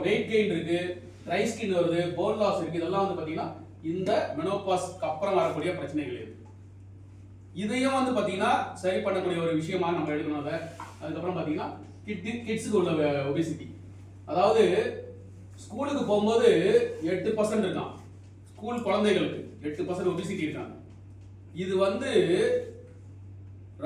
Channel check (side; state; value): both; identical; correlation 1.00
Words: வெயிட் கெயின் இருக்கு, ட்ரை ஸ்கின் வருது, போன் லாஸ் இருக்கு. இதெல்லாம் வந்து பாத்தீங்கன்னா இந்த மெனோபாஸ்க்கு அப்புறம் வரக்கூடிய பிரச்சனைகள் இது. இதையும் வந்து பாத்தீங்கன்னா சரி பண்ணக்கூடிய ஒரு விஷயமா நம்ம எடுக்கணும். அதுக்கப்புறம் பாத்தீங்கன்னா கிட்ஸுக்கு உள்ள ஒபிசிட்டி, அதாவது ஸ்கூலுக்கு போகும்போது 8% இருக்கான். ஸ்கூல் குழந்தைகளுக்கு 8% ஒபிசிட்டி இருக்காங்க. இது வந்து